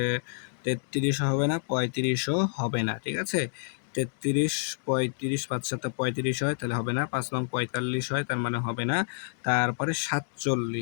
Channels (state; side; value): silent; right; digital silence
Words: 33 হবে না, 35ও হবে না, ঠিক আছে। 33, 35, 5 7 35 হয়, তাহলে হবে না। 5 নং 45 হয়, তার মানে হবে না। তারপরে